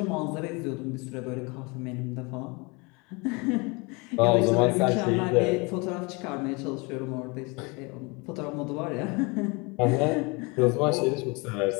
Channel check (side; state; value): right; quieter; 28.3 dB